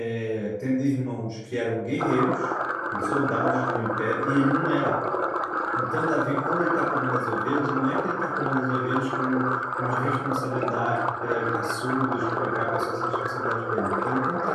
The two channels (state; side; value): identical; both; correlation 1.00